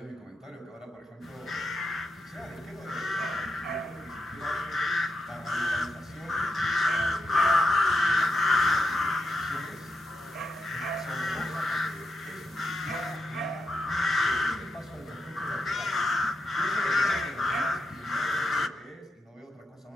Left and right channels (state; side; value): normal; both; correlation 0.85